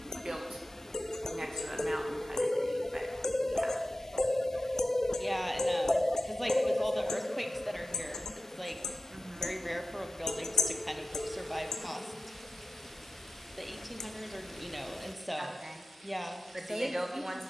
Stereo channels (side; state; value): both; normal; correlation 0.92